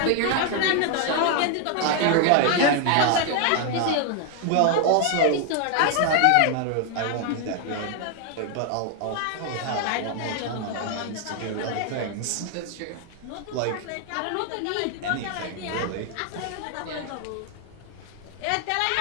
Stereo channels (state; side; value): different; both; correlation 0.01